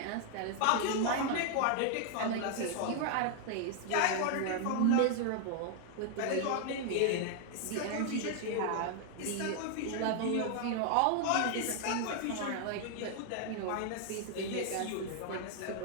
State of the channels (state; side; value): different; both; correlation 0.00